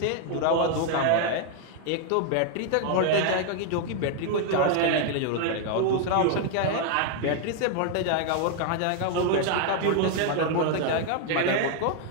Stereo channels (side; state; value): both; different; correlation 0.00